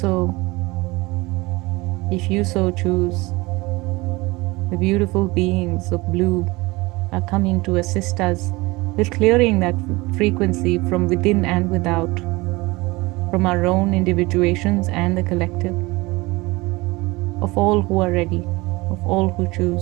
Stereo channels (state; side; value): quieter; left; 22.4 dB